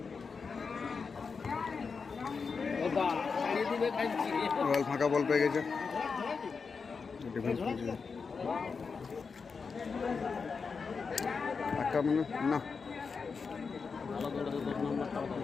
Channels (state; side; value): quieter; right; 5.2 dB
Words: রয়্যাল ফাঁকা বল পেয়ে গেছে, ডিফেন্স আক্রমণে না।